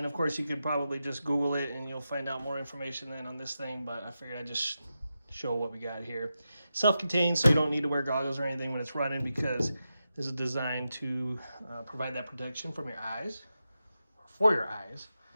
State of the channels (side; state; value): both; inverted; correlation -0.89